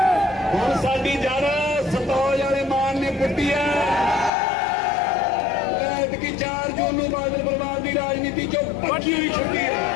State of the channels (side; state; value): right; drops out; at 4.3 s